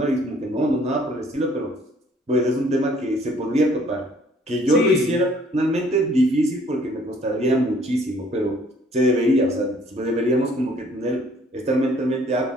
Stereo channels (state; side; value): normal; both; correlation 0.59